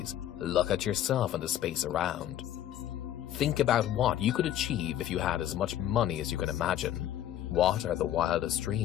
look at yourself and the space around. Think about what you could achieve if you had as much money as you can imagine. What are the wildest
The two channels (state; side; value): quieter; right; 11.8 dB